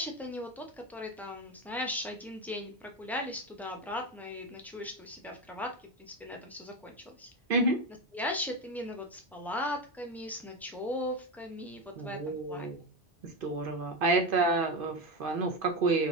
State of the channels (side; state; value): both; normal; correlation 0.15